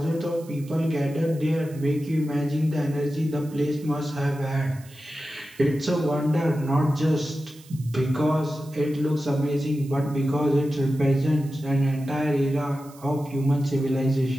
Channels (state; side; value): noise; right; hiss, 23 dB below the sound